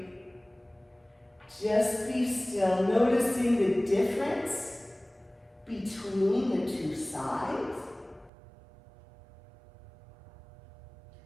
Just be still, noticing the difference between the two sides.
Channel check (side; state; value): left; drops out; at 8.3 s